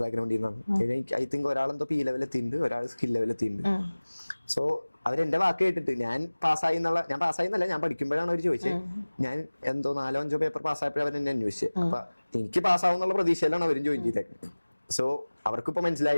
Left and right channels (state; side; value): inverted; both; correlation -1.00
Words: ബാക്ക്ഗ്രൗണ്ടിൽ നിന്നാണ്. ഐ തിങ്ക് ഒരാളെന്തോ P ലെവൽ എത്തിയിട്ടുണ്ട്, ഒരാൾ സ്കിൽ ലെവൽ എത്തിയിട്ടുണ്ട്. സോ അവരെന്റെ വാക്ക് കേട്ടിട്ട് ഞാൻ പാസ്സായി എന്നല്ല, ഞാൻ പഠിക്കുമ്പോഴാണ് അവർ ചോദിച്ചത്. ഞാൻ എന്തോ 4-5 പേപ്പർ പാസ്സായപ്പോഴും അവർ എന്നെ അന്വേഷിച്ചത്. അപ്പൊ എനിക്ക് പാസ്സാവും എന്നുള്ള പ്രതീക്ഷയിലാണ് അവരും ജോയിൻ ചെയ്തേക്കുന്നത്. സോ അവർക്കിപ്പോ